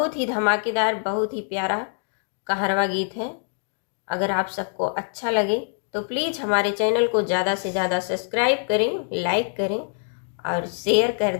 ही धमाकेदार, बहुत ही प्यारा कहरवा गीत है। अगर आप सबको अच्छा लगे तो प्लीज़ हमारे चैनल को ज़्यादा से ज़्यादा सब्सक्राइब करें, लाइक करें और शेयर कर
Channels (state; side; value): silent; right; digital silence